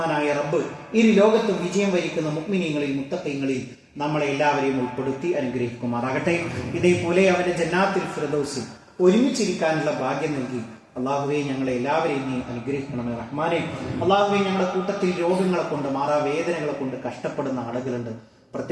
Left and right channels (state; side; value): identical; both; correlation 1.00